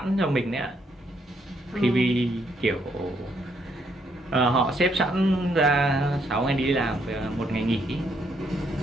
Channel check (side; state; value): both; normal; correlation 0.73